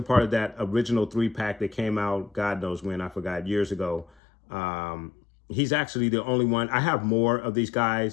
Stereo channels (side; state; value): right; drops out; at 4.1 s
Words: part of that original 3-pack that came out, God knows when, I forgot, years ago. He's actually the only one. I have more of these